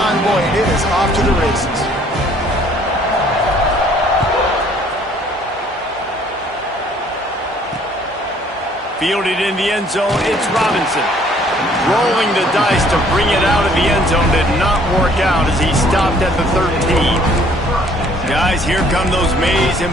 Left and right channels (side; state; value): both; normal; correlation 0.60